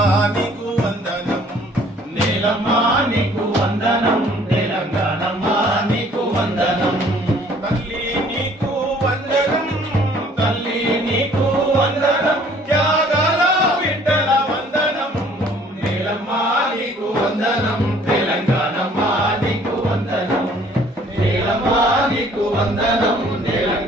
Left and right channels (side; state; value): both; normal; correlation 0.57